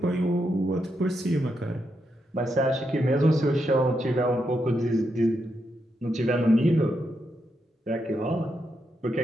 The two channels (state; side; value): normal; both; correlation 0.82